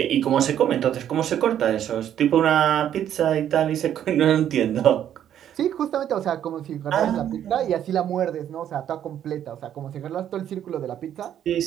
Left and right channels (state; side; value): quieter; left; 10.3 dB